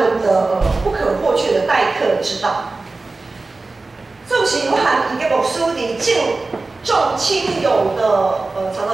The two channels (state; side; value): quieter; left; 3.5 dB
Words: 的不可或缺的待客之道。纵使有含一个牧师伫重亲友的常